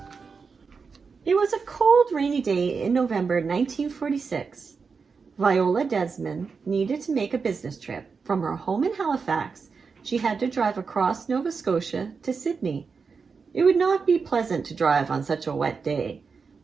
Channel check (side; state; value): left; quieter; 5.2 dB